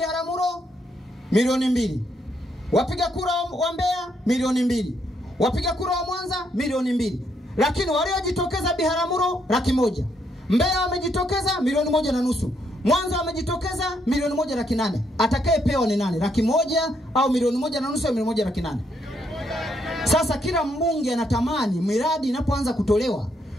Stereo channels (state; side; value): normal; both; correlation 0.75